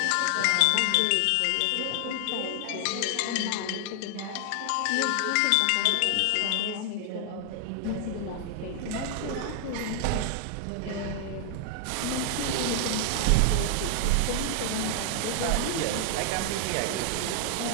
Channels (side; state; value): both; different; correlation 0.00